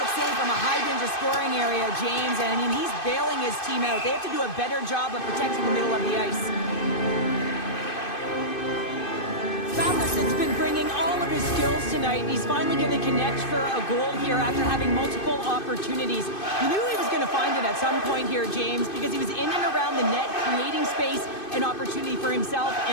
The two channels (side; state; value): right; late; 2.5 ms